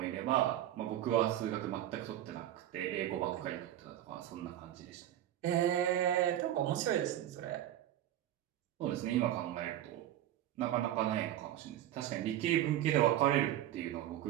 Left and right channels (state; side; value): quieter; left; 12.5 dB